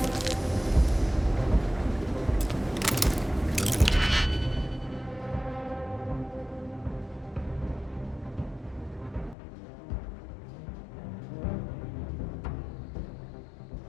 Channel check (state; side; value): drops out; right; at 9.3 s